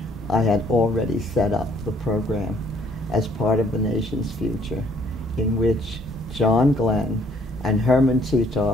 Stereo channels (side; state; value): both; normal; correlation 0.63